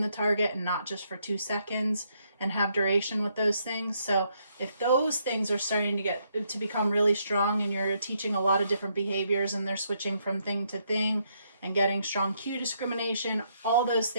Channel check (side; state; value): both; inverted; correlation -0.74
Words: the target and not just for 2 seconds and have duration with those things. So if those things are starting to become really strong and you're teaching a lot of different behaviors and they're switching from thing to thing and getting strong cue discrimination, all those